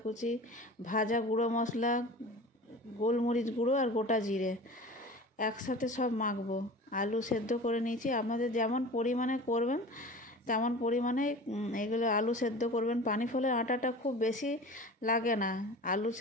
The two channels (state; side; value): normal; both; correlation 0.37